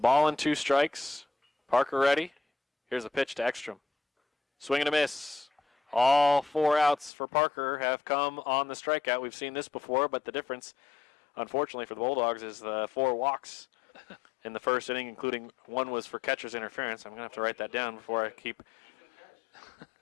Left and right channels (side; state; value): right; drops out; at 7.1 s